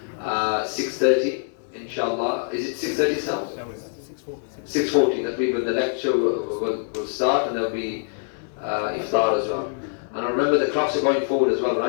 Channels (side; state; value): right; silent; digital silence